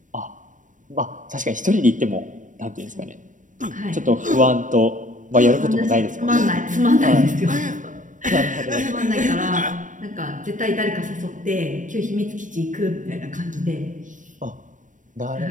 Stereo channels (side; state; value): left; late; 0.37 ms